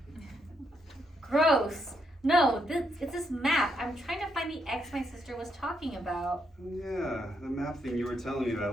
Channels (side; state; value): both; normal; correlation 0.78